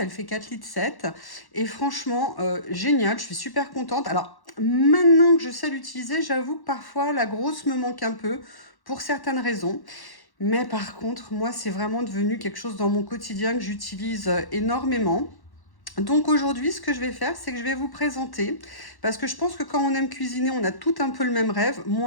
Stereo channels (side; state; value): right; late; 1.1 ms